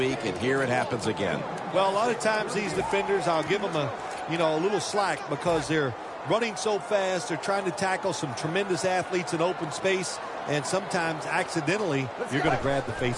and here it happens again. Well, a lot of times these defenders, I'll give them a little slack because they're running so fast. They're trying to tackle some tremendous athletes in open space, and sometimes accidentally you're going to grab the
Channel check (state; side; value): identical; both; correlation 1.00